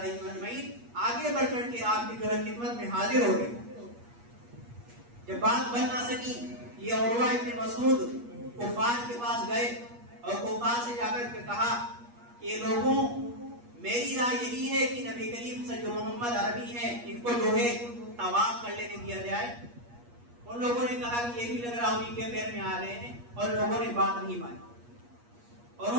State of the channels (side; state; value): left; late; 8.4 ms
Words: اجمعین آگے بڑھ کر کے آپ کی جو ہے خدمت میں حاضر ہو گئے. جب بات بن نہ سکی یہ عروہ ابن مسعود کفار کے پاس گئے اور کفار سے جا کر کے کہا کہ لوگوں میری رائے یہی ہے کہ نبی کریم سے جو محمد عربی ہیں ان کو جو ہے طواف کر لینے دیا جائے. ان لوگوں نے کہا کہ یہ بھی لگ رہا انہیں کے پیر میں آ رہے ہیں اور لوگوں نے بات نہیں مانی. اور